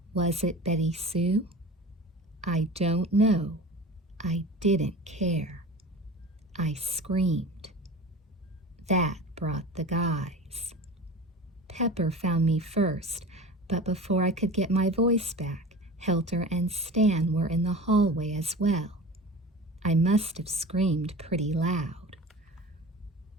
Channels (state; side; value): normal; both; correlation 0.35